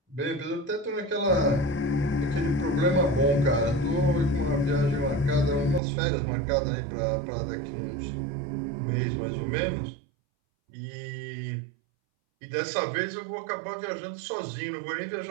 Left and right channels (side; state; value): left; drops out; at 5.8 s